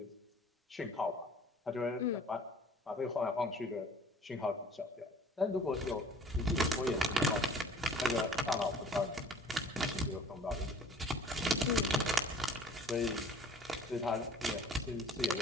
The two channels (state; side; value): normal; both; correlation 0.49